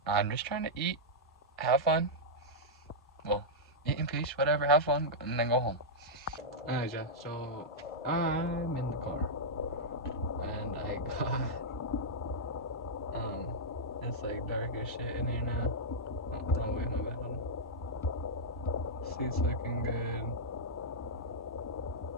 I'm just trying to eat, have fun. Well, eat in peace, whatever, have fun, and then go home. Alright, yeah, so I'm in the car. And I got, it's like dark as shit in here now. Oh, wait, my bad. Seat's looking good.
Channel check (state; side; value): normal; both; correlation -0.08